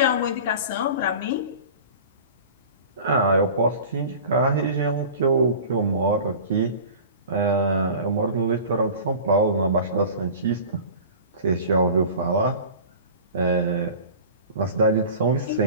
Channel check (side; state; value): both; inverted; correlation -0.38